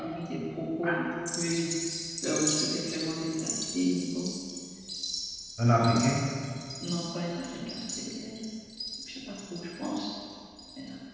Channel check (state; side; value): identical; both; correlation 1.00